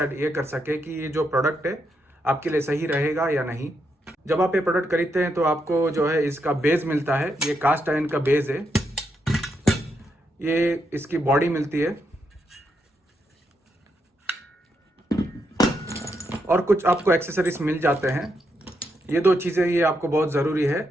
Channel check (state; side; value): normal; both; correlation 0.81